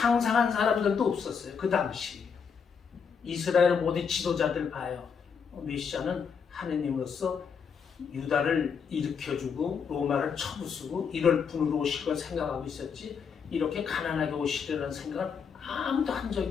사람들도 없었어요. 그 당시 이스라엘 모든 지도자들 봐요. 메시아는 하느님으로서 유다를 일으켜주고 로마를 쳐부수고 이럴 분으로 오실 걸 생각하고 있었지 이렇게 가난하게 오시려는 생각은 아무도 한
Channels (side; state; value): right; quieter; 6.4 dB